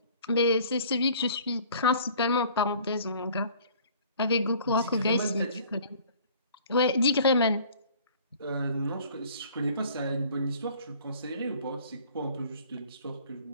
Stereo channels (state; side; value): inverted; both; correlation -0.51